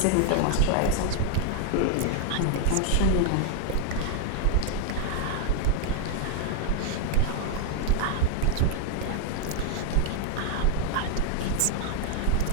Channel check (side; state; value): both; different; correlation 0.00